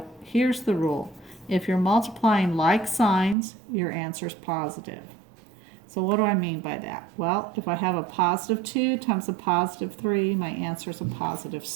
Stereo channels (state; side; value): drops out; left; at 3.4 s